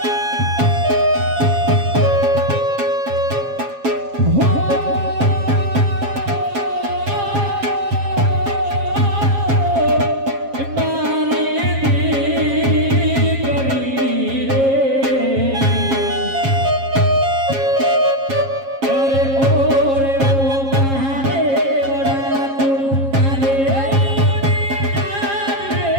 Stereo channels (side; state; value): left; late; 7.4 ms